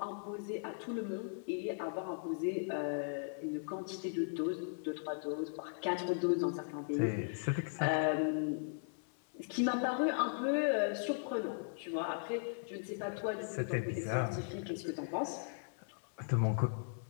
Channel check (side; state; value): right; silent; 53 dB below the other